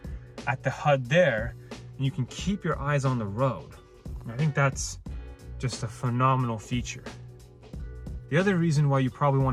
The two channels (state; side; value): identical; both; correlation 1.00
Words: at the HUD there, and you can keep your eyes on the road. And I think that's just a phenomenal feature. The other reason why you probably